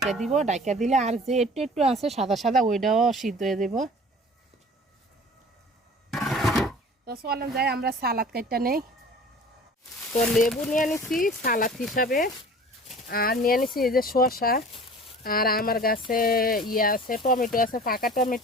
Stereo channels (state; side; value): normal; both; correlation 0.44